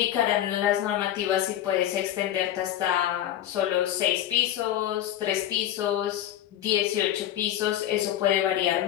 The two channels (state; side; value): quieter; right; 12.0 dB